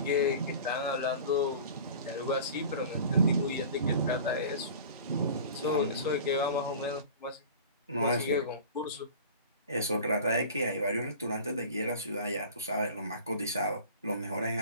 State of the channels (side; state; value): both; inverted; correlation -0.39